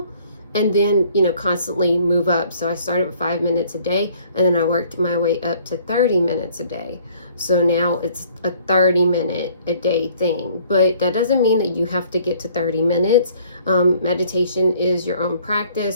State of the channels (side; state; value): both; inverted; correlation -0.58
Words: and then constantly move up. So I started with 5 minutes a day, and then I worked my way up to 30 minutes a day. So now it's a 30-minute a day thing, but that doesn't mean that you have to get to 30 minutes. Meditation is your own